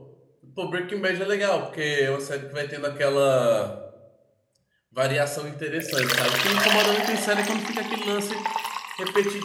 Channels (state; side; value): identical; both; correlation 1.00